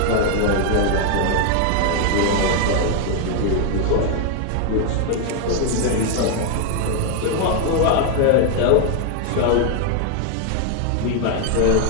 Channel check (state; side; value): different; both; correlation 0.00